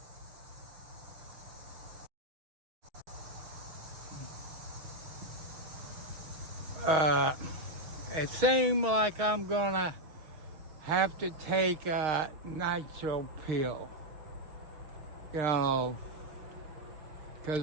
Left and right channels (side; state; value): left; late; 6.3 ms